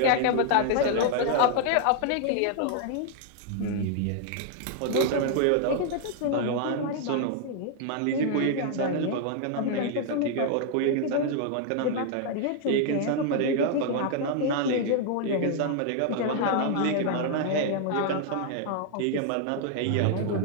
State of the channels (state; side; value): different; both; correlation 0.00